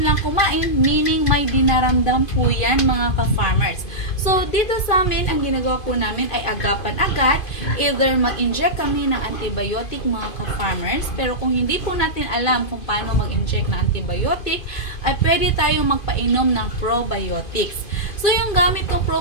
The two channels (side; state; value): right; late; 2.5 ms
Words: lang kumain, meaning may dinaramdam po yan mga ka-farmers. So dito sa amin, ang ginagawa po namin ay agapan agad, either mag-inject kami ng antibiotic mga ka-farmers, pero kung hindi po natin alam kung paano mag-inject ng antibiotic, ay pwede tayong magpainom ng probiotics. So yung gamit kong